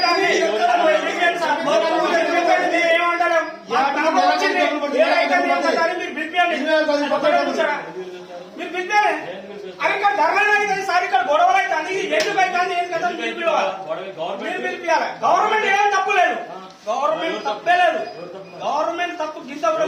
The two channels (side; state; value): both; identical; correlation 1.00